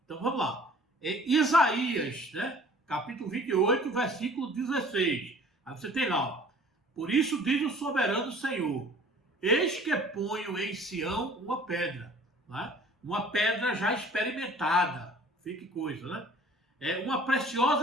Então vamos lá. Isaías, né? Capítulo 28, versículo 16. Aí você tem lá. Por isso diz o soberano Senhor: eis que ponho em Sião uma pedra. Né? Uma pedra já experimentada. Fique coisa, né? Uma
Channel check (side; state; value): both; normal; correlation 0.50